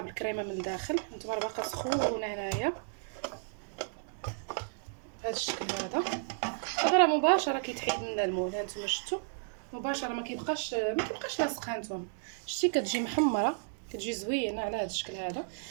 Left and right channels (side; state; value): left; silent; digital silence